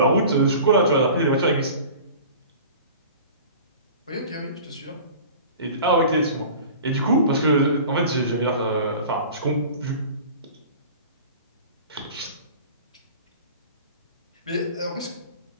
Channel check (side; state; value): both; inverted; correlation -0.41